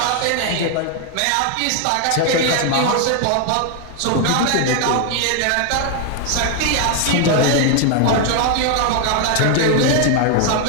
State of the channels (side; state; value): both; different; correlation 0.00